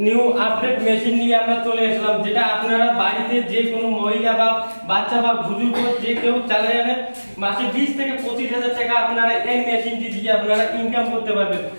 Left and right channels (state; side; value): inverted; both; correlation -1.00